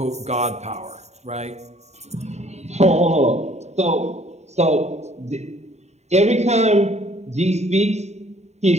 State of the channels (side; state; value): left; late; 0.32 ms